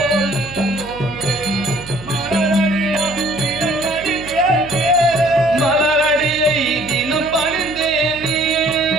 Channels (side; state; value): right; noise; hum, 16 dB below the sound